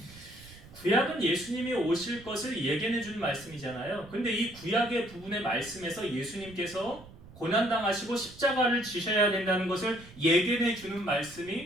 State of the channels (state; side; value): noise; right; rumble, 20 dB below the sound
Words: 구약은 예수님이 오실 것을 예견해 준 말씀이잖아요. 근데 이 구약의 부분의 말씀에서 예수님께서 고난당하시고 십자가를 지셔야 된다는 것을 예견해 주는